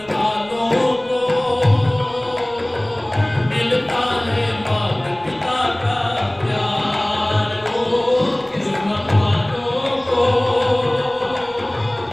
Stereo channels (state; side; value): noise; left; rumble, 28 dB below the sound